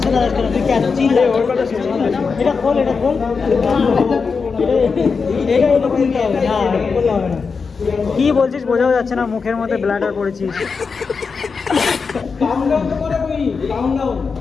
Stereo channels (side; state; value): right; quieter; 5.1 dB